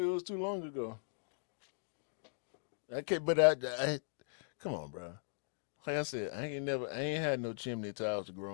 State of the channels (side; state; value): right; silent; digital silence